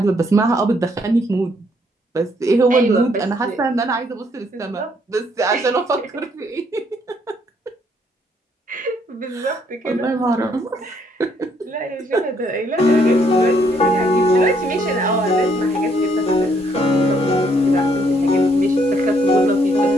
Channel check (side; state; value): both; normal; correlation 0.69